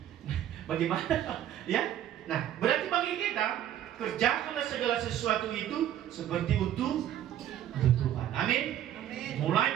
Nah, bagaimana? Ya. Nah, berarti bagi kita, kerjakanlah segala sesuatu itu seperti untuk Tuhan. Amin.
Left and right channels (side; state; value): left; quieter; 11.4 dB